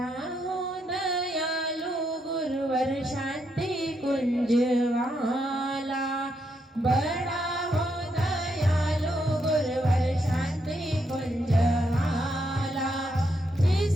हो दयालु गुरुवर शांति कुंज वाला, बड़ा हो दयालु गुरुवर शांति कुंज वाला,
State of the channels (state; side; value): normal; both; correlation 0.79